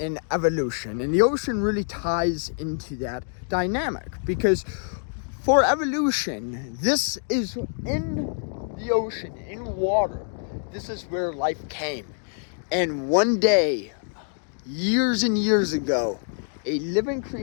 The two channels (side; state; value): right; silent; 61 dB below the other